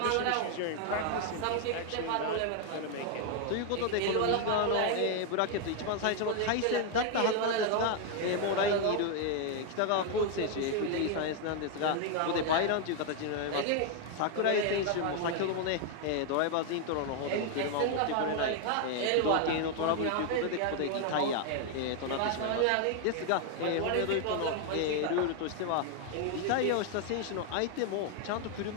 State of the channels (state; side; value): different; both; correlation 0.00